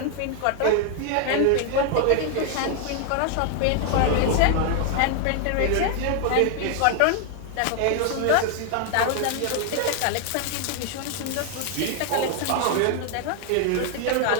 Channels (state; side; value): different; both; correlation 0.01